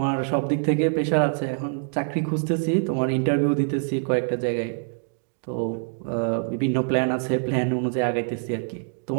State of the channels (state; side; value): silent; left; 62 dB below the other